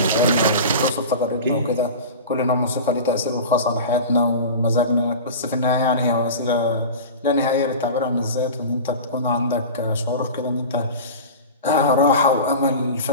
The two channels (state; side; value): inverted; both; correlation -0.32